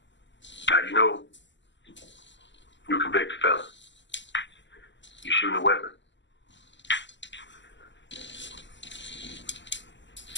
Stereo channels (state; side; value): late; right; 0.53 ms